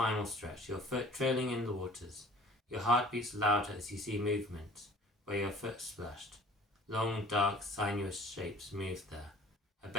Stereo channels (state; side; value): normal; both; correlation 0.49